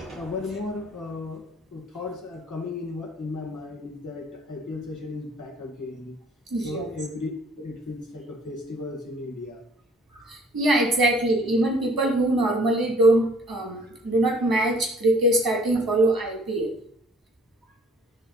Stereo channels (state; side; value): normal; both; correlation 0.56